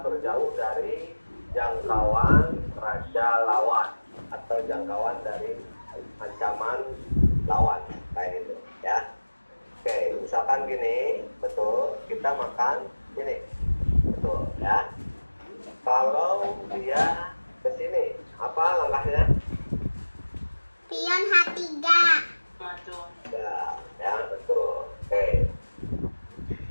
terjauh dari jangkauan raja lawan atau jangkauan dari ancaman lawan, kayak gitu, ya. Oke, misalkan gini, betul, kita makan ini, betul, ya. Kalau dia ke sini, apa langkahnya? Pion H3. Maju. Ya, betul. Oke.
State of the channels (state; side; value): inverted; both; correlation -1.00